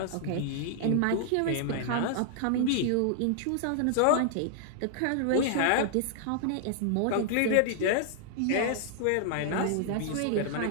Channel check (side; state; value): both; different; correlation -0.01